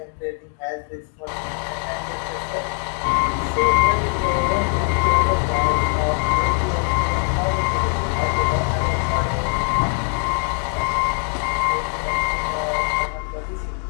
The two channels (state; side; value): quieter; right; 38.6 dB